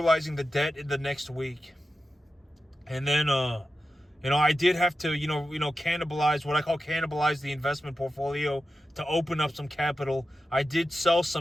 the debt in the next week, and then I did have to, cannibalize what I call cannibalize the investment portfolio to open up some capital. I did sell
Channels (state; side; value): normal; both; correlation 0.92